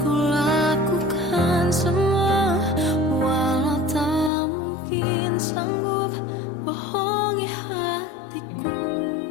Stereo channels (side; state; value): right; drops out; at 4.3 s